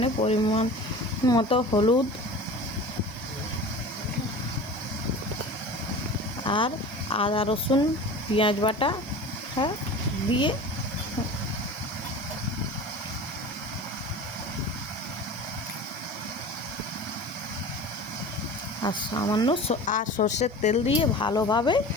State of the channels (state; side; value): normal; both; correlation 0.36